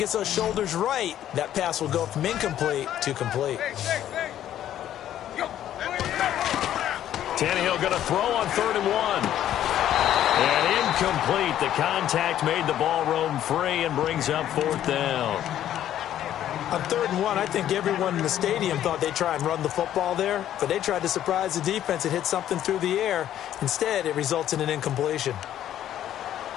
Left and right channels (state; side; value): quieter; right; 11.5 dB